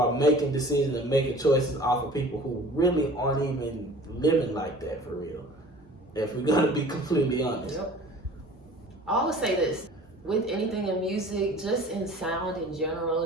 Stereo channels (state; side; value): normal; both; correlation 0.45